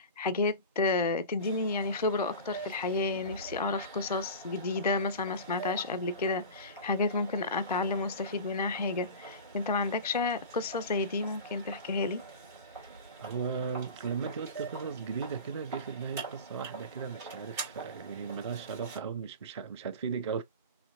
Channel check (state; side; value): inverted; both; correlation -0.31